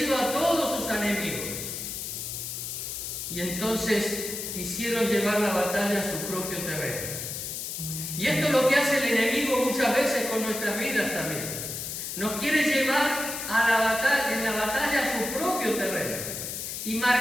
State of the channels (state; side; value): noise; left; hiss, 5 dB below the sound